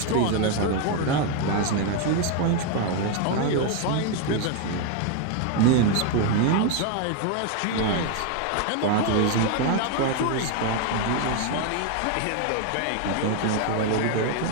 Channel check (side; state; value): both; different; correlation 0.01